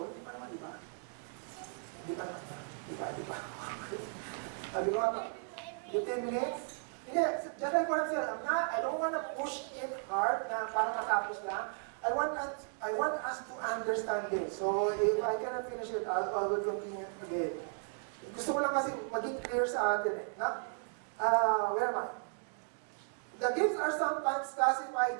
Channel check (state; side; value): silent; left; 54 dB below the other